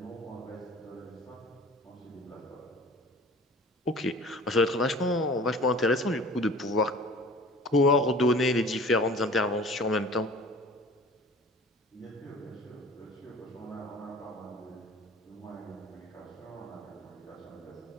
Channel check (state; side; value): normal; both; correlation 0.45